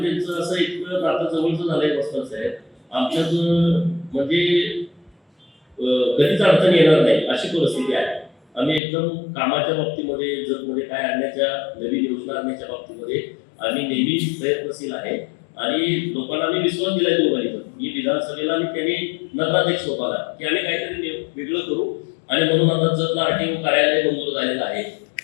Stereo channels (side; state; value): right; drops out; at 8.8 s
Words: त्यांचं असं इतकं नातं जवळचं झालंय बसतात साहेब, आमच्यात म्हणजे कधीच अडचण येणार नाही अशी परिस्थिती आहे. आम्ही एकदम कामाच्या बाबतीमध्ये जगमध्ये काय आणण्याच्या नवीन योजना आणण्याच्या बाबतीमध्ये आम्ही नेहमी प्रयत्नशील आहे आणि लोकांना आम्ही विश्वास दिलाय दोघांनी. मी विधानसभेला आणि त्यांनी नगराध्यक्ष होता की आम्ही काहीतरी वेगळं करू आणि म्हणून आता जतला आरटीओ कार्यालय मंजूर झालेलं आहे.